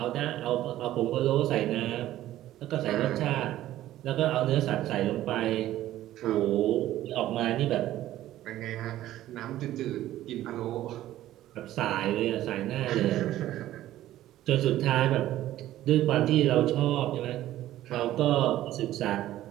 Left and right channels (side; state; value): left; quieter; 14.0 dB